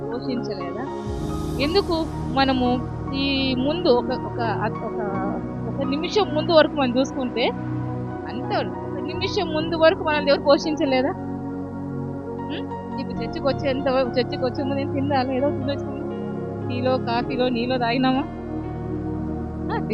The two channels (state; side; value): identical; both; correlation 1.00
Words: పోషించలేదా? ఎందుకు? మనము ఈ ముందు ఒక నిమిషం ముందు వరకు మనం చూసుకుంటే అంతే, ఒక నిమిషం ముందు వరకు మన దేవుడు పోషించలేదా? ఇప్పుడు చర్చికి వచ్చే ముందు నేను తిందాలి, ఏదో తినొచ్చింది, టీలో కాఫీలో నీలో తాగినామా,